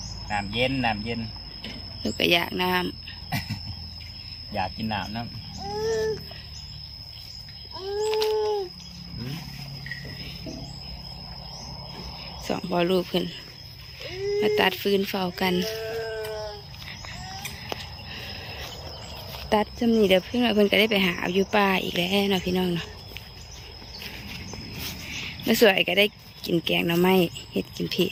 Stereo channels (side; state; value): both; identical; correlation 1.00